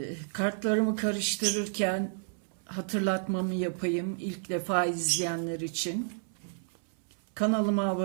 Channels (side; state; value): left; silent; 57 dB below the other